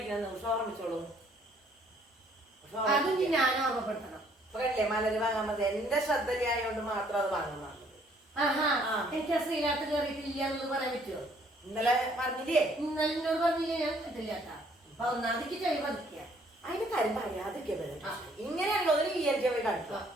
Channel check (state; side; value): normal; both; correlation 0.63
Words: ഓർമ്മിച്ചോളൂ. അതും ഞാൻ ഓർമ്മപ്പെടുത്തണം. അല്ലേ മലര് വാങ്ങാൻ മതി. എന്റെ ശ്രദ്ധയായോണ്ട് മാത്രം അത് വാങ്ങുന്നതാണ്. എനിക്ക് ആ ശ്രീനാഥ് കയറിയിട്ടില്ല എന്നുള്ളത് പറയാൻ പറ്റുമോ? ഇന്നലെ പറഞ്ഞില്ലേ? ഇന്നലെ എന്നോട് പറഞ്ഞില്ലേ? ഞാൻ കിട്ടില്ല കേട്ടാ. അപ്പൊ ഒന്നാമതിക്ക് ചെവി പതിക്കുക. അതിന് കാര്യം പറയാതൊക്കെ ഇങ്ങനെയുള്ളതിന് പോയി കാണിക്കുക.